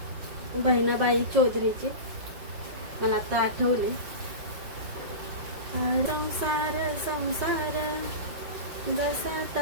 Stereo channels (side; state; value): left; late; 5.5 ms